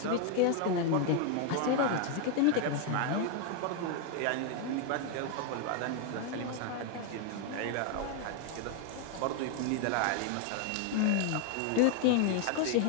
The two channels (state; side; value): different; both; correlation 0.00